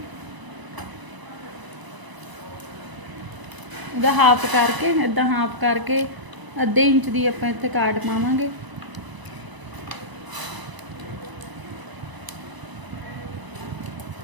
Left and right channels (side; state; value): left; late; 1.0 ms